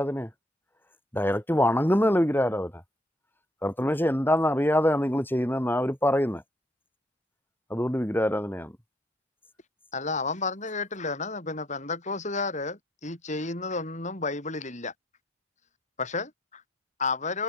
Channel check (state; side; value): normal; both; correlation 0.70